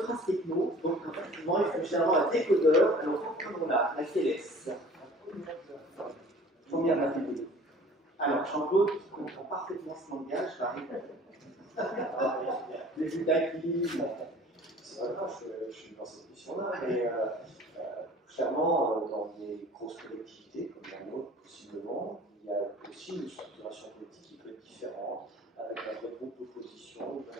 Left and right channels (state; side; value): normal; both; correlation 0.47